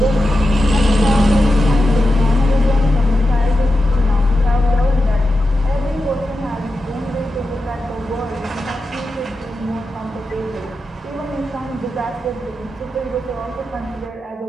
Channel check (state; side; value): normal; both; correlation 0.90